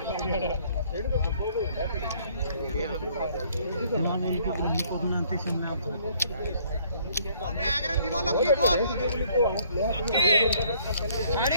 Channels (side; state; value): both; inverted; correlation -0.61